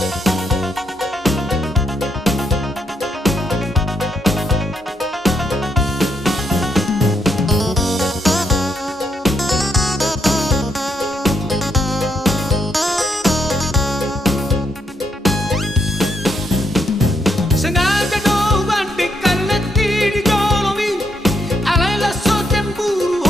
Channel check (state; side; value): normal; both; correlation 0.77